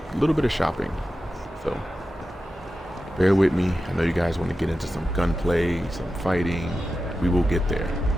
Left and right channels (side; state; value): both; normal; correlation 0.92